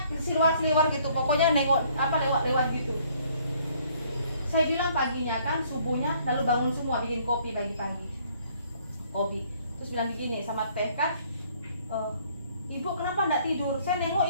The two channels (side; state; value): both; inverted; correlation -0.62